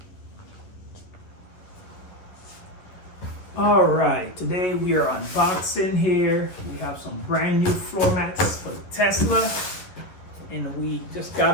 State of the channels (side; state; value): right; late; 11 ms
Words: All right, today we are unboxing here. We have some brand new floor mats for the Tesla, and we just